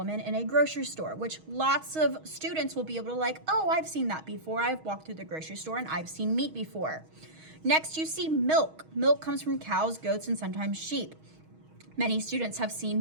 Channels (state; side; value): late; left; 6.3 ms